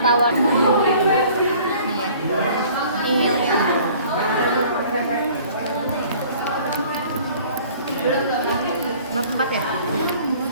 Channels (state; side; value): inverted; both; correlation -0.51